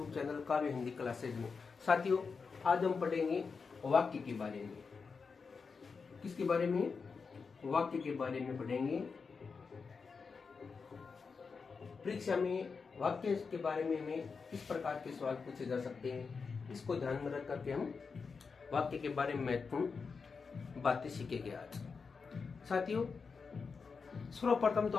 चैनल काव्य हिंदी क्लासेज में। साथियों, आज हम पढ़ेंगे वाक्य के बारे में। किसके बारे में? वाक्य के बारे में पढ़ेंगे। परीक्षा में वाक्य के बारे में हमें किस प्रकार के सवाल पूछे जा सकते हैं, इसको ध्यान में रख करके हम वाक्य के बारे में महत्वपूर्ण बातें सीखेंगे आज। साथियों, सर्वप्रथम तो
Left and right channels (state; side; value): quieter; right; 5.1 dB